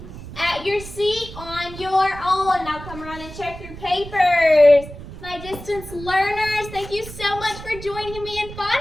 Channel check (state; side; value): noise; right; rumble, 13 dB below the sound